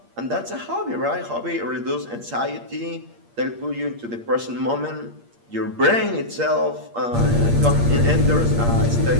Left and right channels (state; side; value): late; left; 8.6 ms